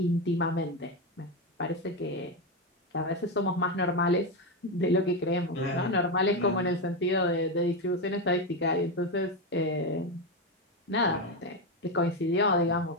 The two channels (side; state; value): both; normal; correlation 0.11